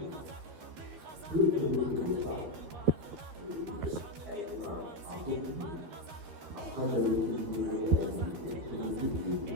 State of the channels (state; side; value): late; left; 13 ms